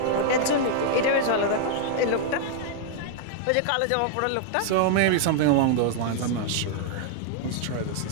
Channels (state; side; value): different; both; correlation -0.01